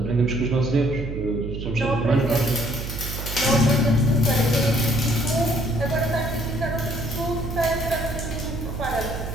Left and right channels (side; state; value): right; noise; hum, 6 dB below the sound